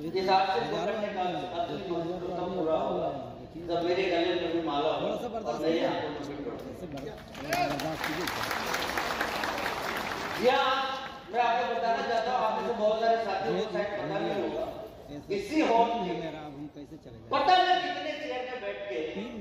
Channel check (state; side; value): identical; both; correlation 1.00